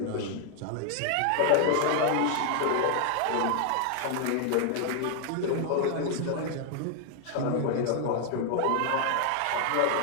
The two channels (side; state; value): both; different; correlation 0.00